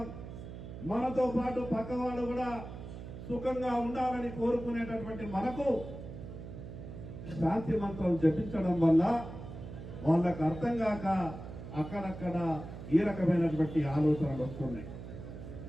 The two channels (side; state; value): right; noise; hum, 11 dB below the sound